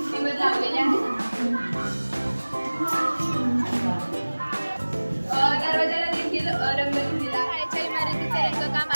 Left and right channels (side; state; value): both; inverted; correlation -1.00